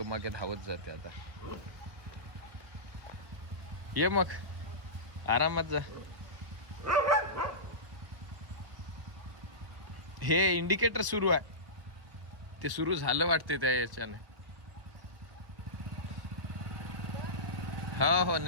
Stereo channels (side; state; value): left; late; 1.0 ms